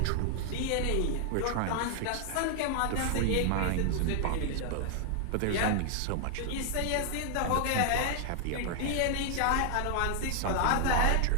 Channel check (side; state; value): both; different; correlation 0.00